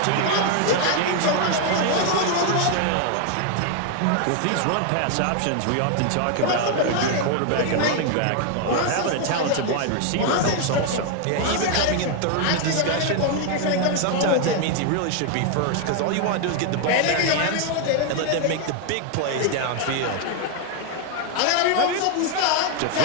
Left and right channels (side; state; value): both; different; correlation 0.00